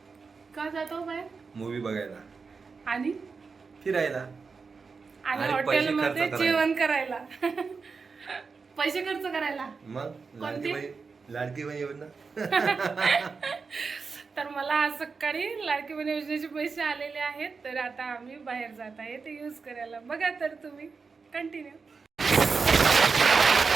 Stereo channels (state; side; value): quieter; left; 4.9 dB